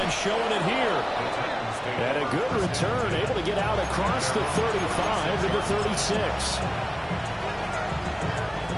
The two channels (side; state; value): both; identical; correlation 1.00